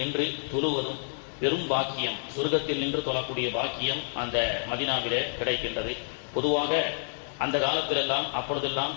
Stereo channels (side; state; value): right; silent; digital silence